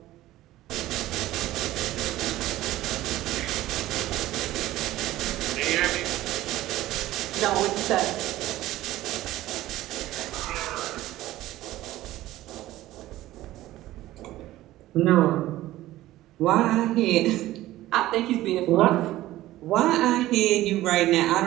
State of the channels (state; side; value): quieter; left; 15.7 dB